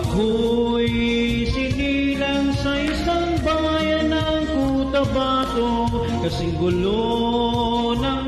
sinilang sa isang bayan ng Cotabato, kasing gulo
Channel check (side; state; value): both; identical; correlation 1.00